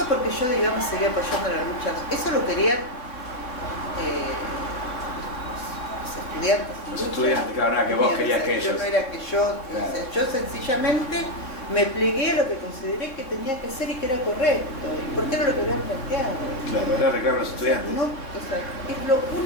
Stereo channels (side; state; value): right; late; 3.7 ms